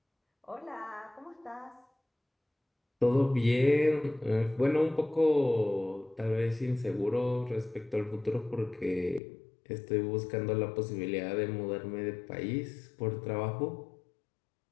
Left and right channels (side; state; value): right; drops out; at 9.2 s